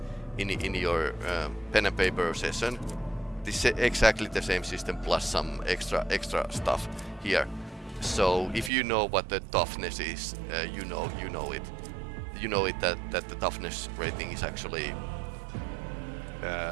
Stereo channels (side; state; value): left; drops out; at 8.7 s